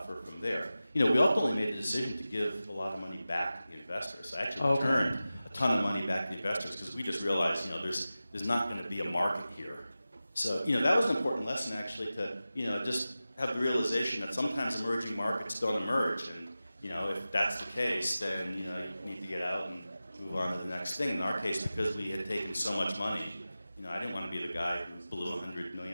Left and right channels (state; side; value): inverted; both; correlation -0.95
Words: from there. You know, we ultimately made the decision to give a lot of money back to the investors. I actually returned a ton of money back to the investors because we just realized, you know, there's not going to be a market here. So, you know, that was an important lesson actually to, you know, just have the realization that sometimes emerging markets don't emerge. And, you know, if that's the case, then, you know, you need to get out and move on to the next thing. In our case, because we had taken so much money, you know, I didn't want to be the guy who blew $100